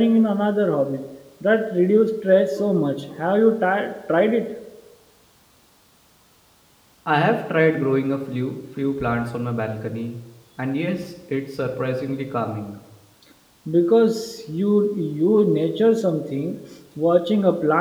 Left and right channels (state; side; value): identical; both; correlation 1.00